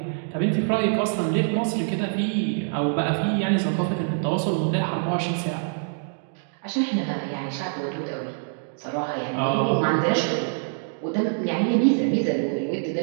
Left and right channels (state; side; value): silent; left; digital silence